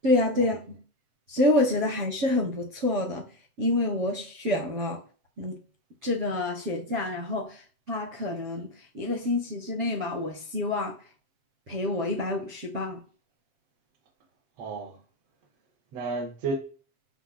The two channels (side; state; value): left; late; 7.7 ms